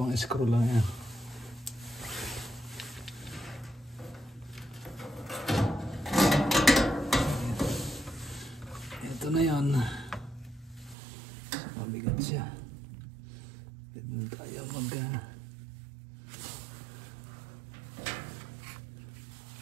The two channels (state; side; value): drops out; left; at 11.0 s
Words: screw lang yan. Ito na yan. Mabigat siya. Hindi tayo